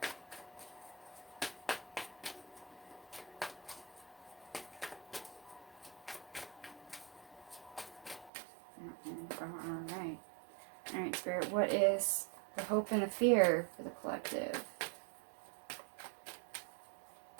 Alright, Spirit, what is the hope and the fear for the collective?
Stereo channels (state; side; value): drops out; left; at 8.3 s